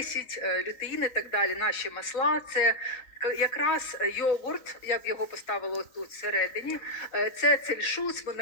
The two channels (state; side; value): late; right; 3.9 ms